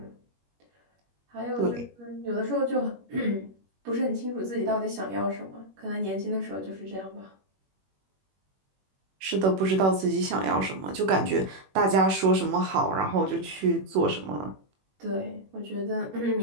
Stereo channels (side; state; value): left; late; 21 ms